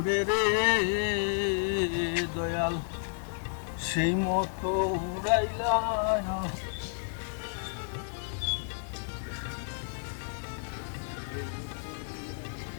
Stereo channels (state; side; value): silent; right; digital silence